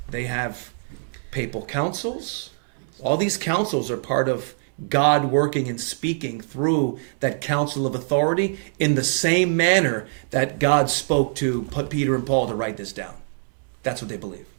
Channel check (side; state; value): left; silent; 61 dB below the other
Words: They have papal councils. All these councils are part of God working and speaking through that council of authority in the same manner that God spoke to Peter and Paul to write this down. That's what they believe.